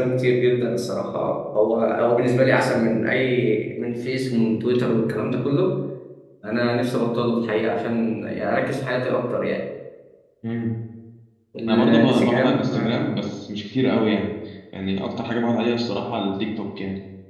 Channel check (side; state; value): both; identical; correlation 1.00